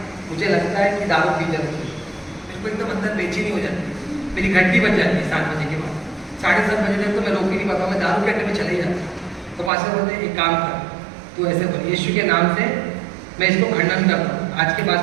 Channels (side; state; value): left; drops out; at 9.7 s